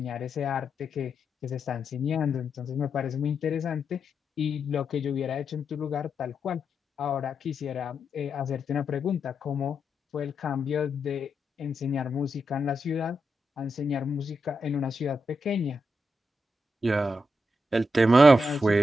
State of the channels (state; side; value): normal; both; correlation 0.84